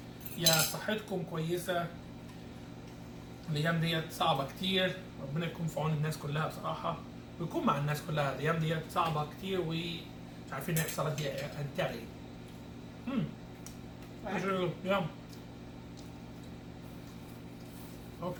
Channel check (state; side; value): identical; both; correlation 1.00